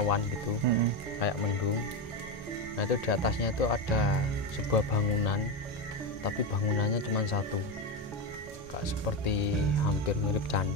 gitu, kayak mendung. Nah itu di atasnya itu ada sebuah bangunan, tapi bangunannya cuma satu, kayak seperti hampir mirip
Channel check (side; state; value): both; normal; correlation 0.13